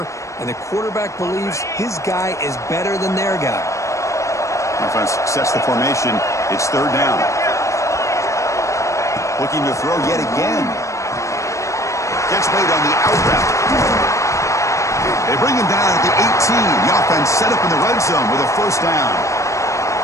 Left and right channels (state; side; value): late; right; 0.15 ms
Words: And the quarterback believes his guy is better than their guy. Offense sets the formation. It's third down. Looking to throw yet again. Catch made on the out route. They bring him down at the 18. The offense set up in the red zone with a first down.